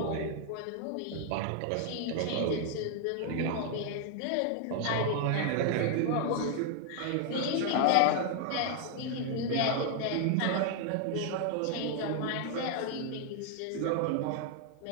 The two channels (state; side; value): different; both; correlation 0.00